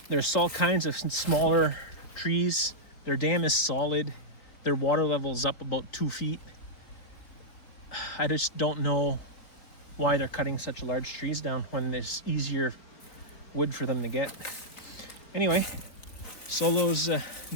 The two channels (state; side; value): late; right; 4.2 ms